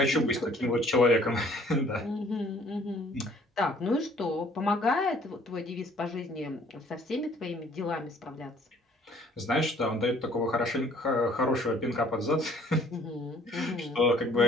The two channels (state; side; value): normal; both; correlation 0.57